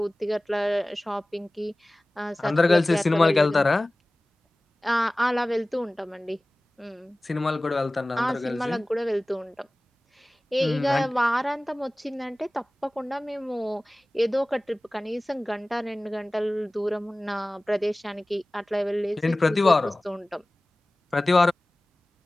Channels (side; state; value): both; normal; correlation 0.98